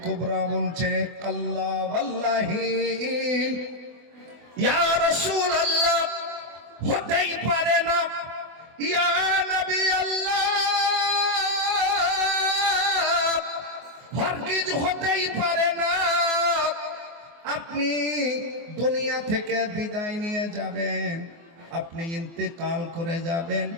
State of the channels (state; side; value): late; left; 24 ms